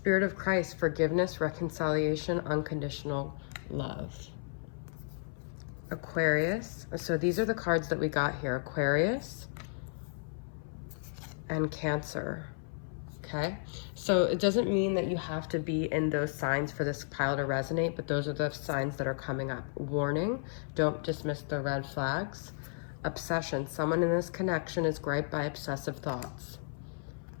of Christ, forgiveness, reconciliation, unconditional love. Aquarius. So these are the cards that we got here. Aquarius and Cancer. Okay, so it doesn't mean that you have to be in those signs for this pile to resonate, but those are the signs that are coming up. Warning, don't dismiss the red flags. Obsession, someone in this connection is griped by obsessive thoughts.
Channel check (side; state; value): right; silent; 56 dB below the other